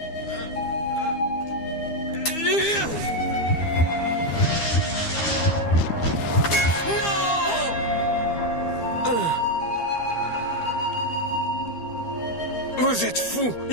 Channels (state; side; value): late; right; 12 ms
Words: Vous êtes fous.